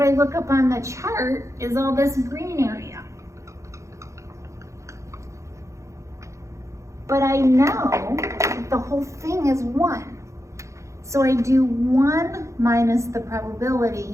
I look up on the chart is all this green area. But I know the whole thing is 1. So I do 1 minus the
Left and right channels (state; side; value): late; left; 0.15 ms